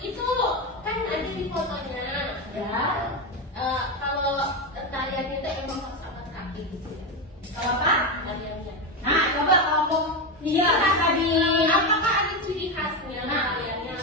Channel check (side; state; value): both; normal; correlation 0.13